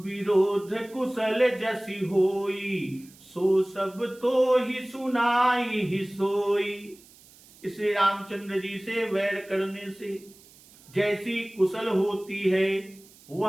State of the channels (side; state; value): right; noise; hiss, 25 dB below the sound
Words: विरोध कुशल जसी होई, सो सब तो ही सुनाई ही सोई। इसलिए रामचंद्र जी से वैर करने से जैसी कुशल होती है